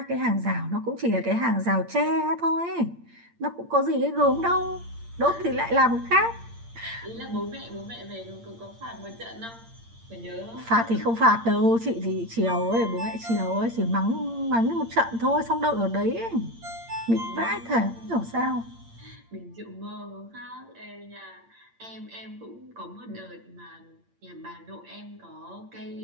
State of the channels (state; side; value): late; left; 8.7 ms